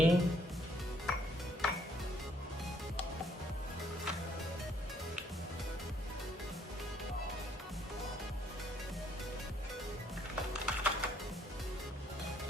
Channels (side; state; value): both; normal; correlation 0.67